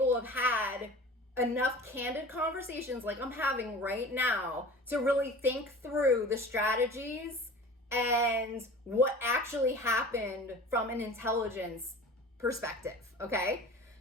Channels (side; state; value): both; normal; correlation 0.40